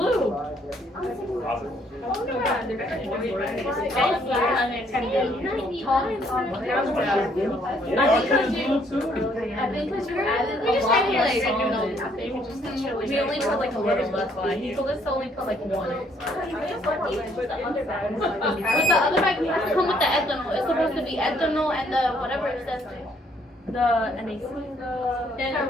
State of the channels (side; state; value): both; normal; correlation 0.67